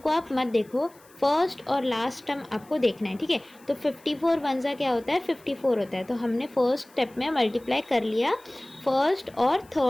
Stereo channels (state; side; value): noise; left; hiss, 28 dB below the sound